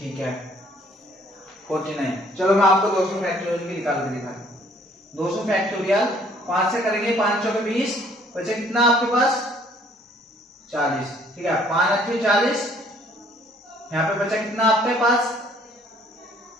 है, 49। चलो मैं आपको 200 फैक्टोरियल की निकाल के दिखाता हूँ। 200 फैक्टोरियल 5 से करेंगे, 5 चौके 20 बचे कितना आपके पास? 40। ठीक है, 5 अच्छे 40। यहाँ पे बचा कितना आपके पास?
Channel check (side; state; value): both; normal; correlation 0.60